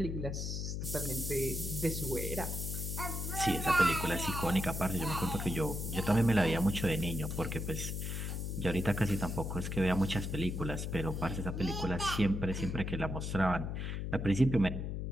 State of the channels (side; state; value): left; noise; hum, 3 dB below the sound